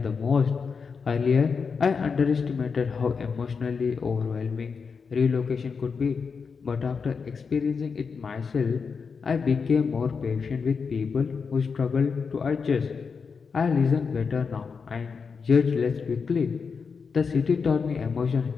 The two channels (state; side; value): quieter; right; 5.5 dB